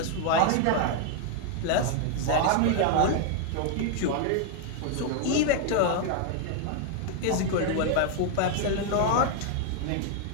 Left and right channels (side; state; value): both; different; correlation 0.00